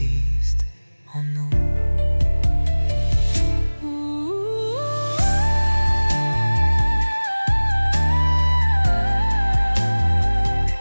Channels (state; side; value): inverted; both; correlation -1.00